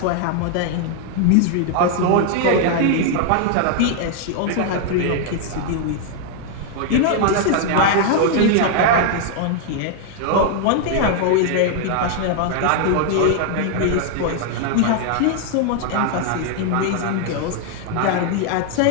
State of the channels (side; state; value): both; different; correlation 0.00